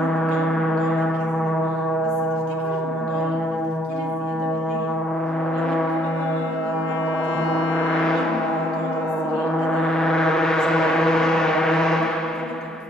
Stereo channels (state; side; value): normal; both; correlation 0.66